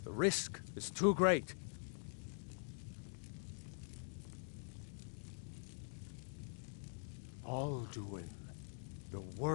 The risk is too great. Alduin, the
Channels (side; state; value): right; silent; digital silence